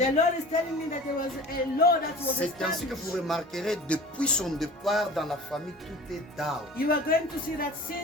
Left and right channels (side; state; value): both; normal; correlation 0.40